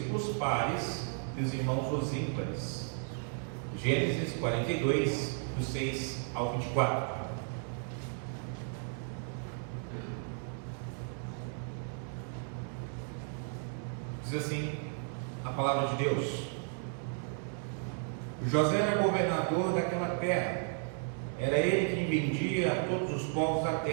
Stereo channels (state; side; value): silent; left; 55 dB below the other